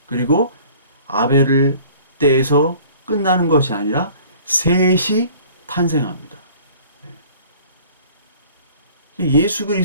그리고 아벨을 때에서 끝나는 것이 아니라 셋이 탄생합니다. 예수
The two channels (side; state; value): both; inverted; correlation -0.50